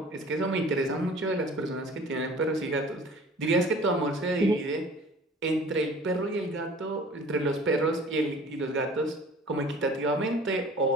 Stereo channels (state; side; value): normal; both; correlation 0.47